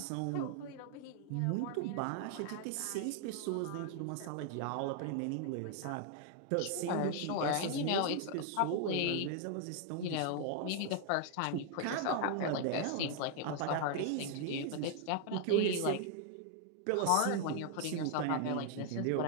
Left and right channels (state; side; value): different; both; correlation 0.00